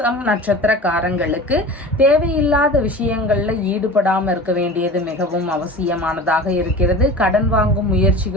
நட்சத்திரக்காரங்களுக்கு தேவையில்லாத விஷயங்களில் ஈடுபடாமல் இருக்க வேண்டியது மிகவும் அவசியமானதாக இருக்கிறது. கடன் வாங்கும்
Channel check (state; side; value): normal; both; correlation 0.36